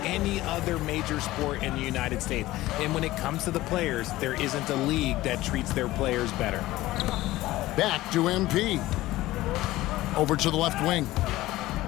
any other major sport in the United States. And when it comes to the players, there isn't a league that treats their players better. Back to MP. Over to the left wing.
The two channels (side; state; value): right; quieter; 17.1 dB